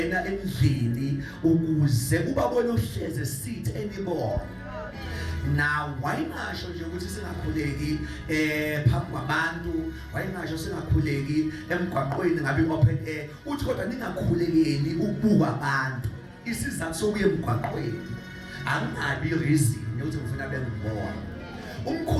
endlini ukuze ubabone uhleze esithi anymore. Now wayingasho nje ukuthi singakhuleki phambi kwabantu, wayingasho singakhuleki emgwaqweni ngabe open air, uthi kodwa ningakhulekeli ukubuka abantu. Isizathu sokuya emgwaqweni angabi reason ukuthi ngifuna bengibona.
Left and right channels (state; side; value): identical; both; correlation 1.00